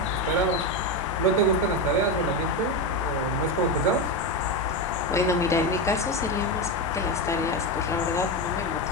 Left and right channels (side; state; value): both; normal; correlation 0.14